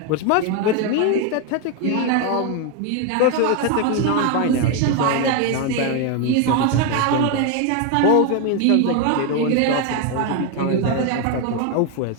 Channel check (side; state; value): both; different; correlation 0.01